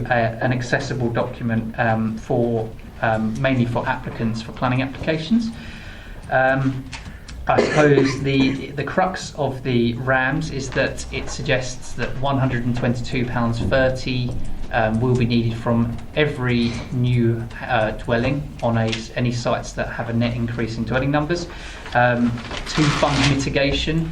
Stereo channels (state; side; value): identical; both; correlation 1.00